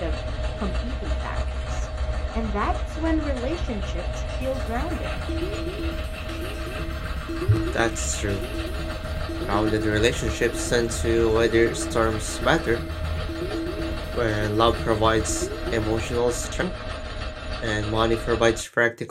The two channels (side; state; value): both; identical; correlation 1.00